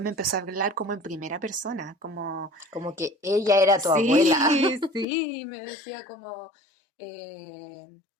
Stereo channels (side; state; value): right; drops out; at 5.1 s